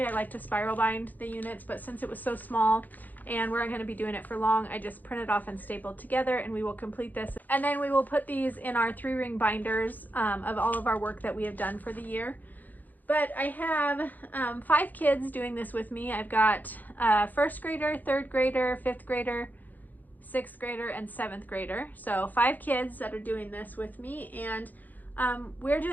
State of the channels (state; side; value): late; right; 0.084 ms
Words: I like to spiral bind the units, but since it was so small and we're going to be doing it for long, I just printed off and stapled together, and we will complete this. And then we will put these in our 3-ring binders of all of our work that we have done for the year. But I have 5 kids doing this with me. I've got first grader, third grader, fifth grader, 6th grader, and 7th grader. So 5 kids that are doing this with me, and we're